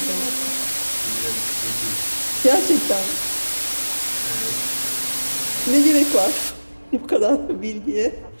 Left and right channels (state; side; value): inverted; both; correlation -1.00